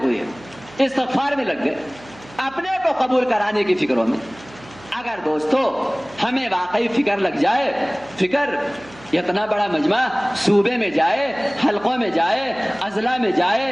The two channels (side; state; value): right; noise; hum, 22 dB below the sound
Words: ہوئے، استغفار میں لگ گئے، اپنے کو قبول کرانے کی فکروں میں. اگر دوستو ہمیں واقعی فکر لگ جائے، فکر اتنا بڑا مجمع صوبے میں جائے، حلقوں میں جائے، اضلاع میں